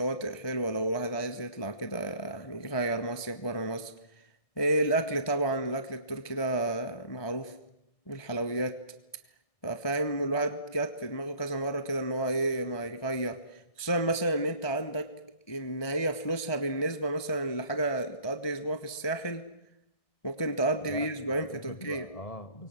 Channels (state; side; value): late; right; 1.2 ms